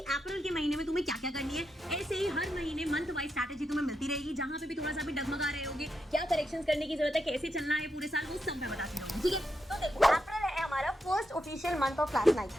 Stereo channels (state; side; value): normal; both; correlation 0.84